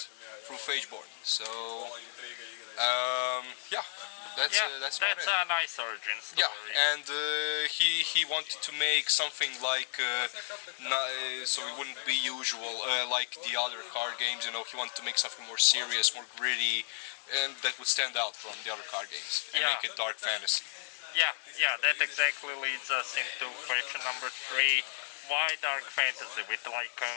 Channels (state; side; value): silent; right; digital silence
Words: through Phageborn. So yeah, that's a nice origin story. Yeah, and he wanted to make something like so it wouldn't be usual like the other card games. You know, he wanted to make something more serious, more gritty, and that would stand out from the other card games and make it dark fantasy. Yeah, that exactly leads us into question number 3. Why dark fantasy with like a